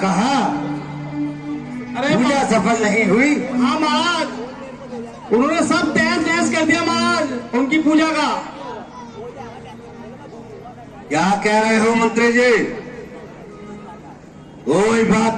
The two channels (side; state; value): both; identical; correlation 1.00